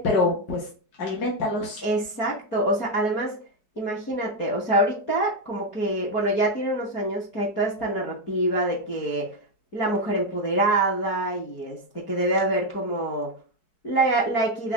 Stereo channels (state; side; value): late; right; 4.7 ms